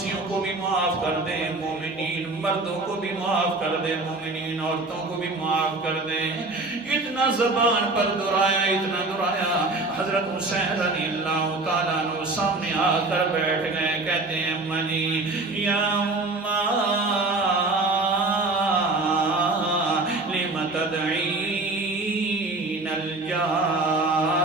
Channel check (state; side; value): quieter; left; 3.1 dB